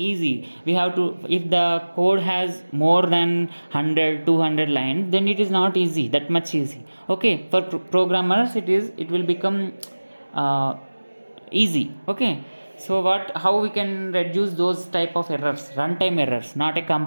We have to, if the code has more than 100-200 lines, then it is not easy, that much easy. Okay, for programmers it will become easy. Okay, so how we can reduce those type of errors? Runtime errors, not a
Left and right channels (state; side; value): inverted; both; correlation -1.00